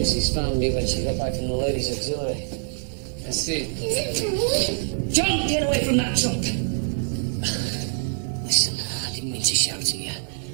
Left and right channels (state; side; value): silent; left; 62 dB below the other